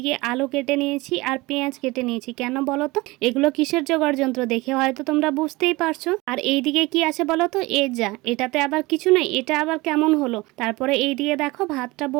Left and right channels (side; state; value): left; quieter; 22.0 dB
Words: আলু কেটে নিয়েছি আর পেঁয়াজ কেটে নিয়েছি। কেন বলো তো? এগুলো কিসের জোগাড় যন্ত্র দেখে হয়তো তোমরা বুঝতেই পারছো। আর এইদিকে কি আছে বলো তো? এটাতে আবার কিছু নেই, এটা আবার কেমন হলো? তারপরে এইদিকে দেখো ভাতটা